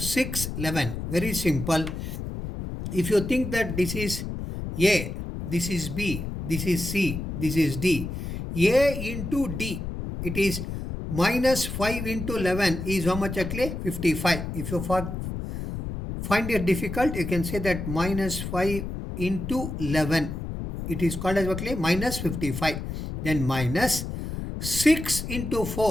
11. Very simple. If you think that this is A, this is B, this is C, this is D, A into D, it is minus 5 into 11 is how much actually? 55. If you find it difficult, you can say that minus 5 into 11. It is called as actually minus 55. Then minus 6 into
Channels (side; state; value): left; noise; rumble, 6 dB below the sound